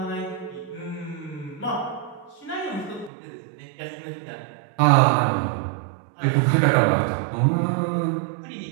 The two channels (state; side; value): drops out; left; at 3.1 s